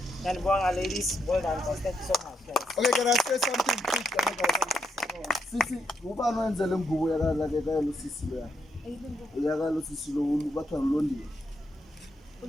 Send Bong, ladies. Well done, guys. Thank you so much, guys. Okay, can I say something quick? Sisi, ubani wenzele mgubo yakala Sisi lo ya. Yakala Sisi lo batho ngilondiwe.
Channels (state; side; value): normal; both; correlation 0.79